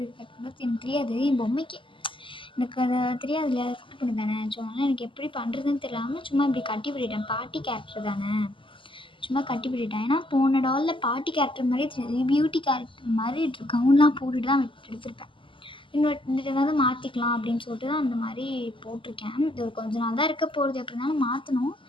கட்டும்போது எனக்கு தெரியாது, என் பொம்மைக்கு எனக்கு அது தெரியாது இல்லையா, சூட் பண்ணி தானே. ஸோ அதனால் எனக்கு எப்படி பண்ணுறதுன்னு தெரியாமல் சும்மா இப்படி கட்டி விட்டுட்டேன். பாட்டி கேரக்டர் தானே, சும்மா கட்டி விட்டுட்டேன். ஏன்னா போன டாலில் பாட்டி கேரக்டர் மாதிரி தெரியாது, பியூட்டி கேரக்டர் மாதிரி கவுன்லாம் போட்டுட்டு தான் எடுத்திருப்பேன். இந்த வந்து மாற்றிக்கலாம் அப்படின்னு சொல்லிட்டு தான் அந்த மாதிரி போட்டிருக்கேன். இது ஒரு கொஞ்ச நாள் தான் இருக்க போகிறது, எப்படி இருந்தாலும் மாற்றணும்.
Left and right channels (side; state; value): right; late; 0.25 ms